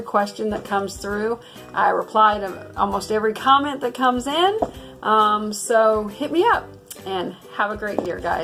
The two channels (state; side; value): identical; both; correlation 1.00